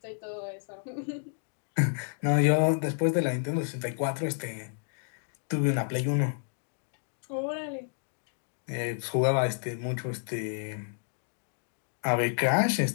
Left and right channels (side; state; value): right; silent; digital silence